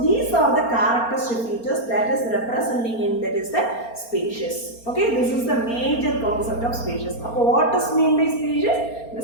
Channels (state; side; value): late; right; 4.3 ms